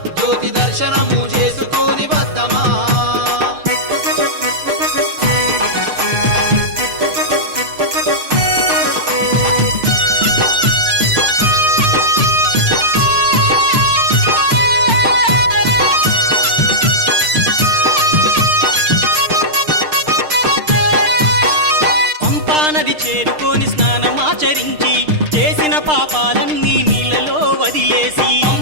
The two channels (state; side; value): late; left; 6.6 ms